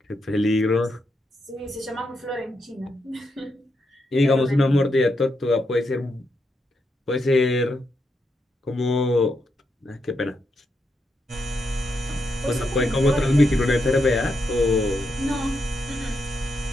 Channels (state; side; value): normal; both; correlation 0.82